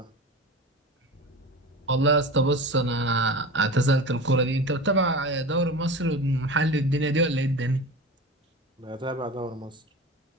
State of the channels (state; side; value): normal; both; correlation 0.31